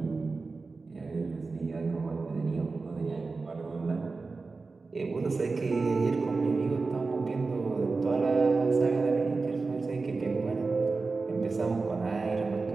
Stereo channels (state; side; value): quieter; left; 4.0 dB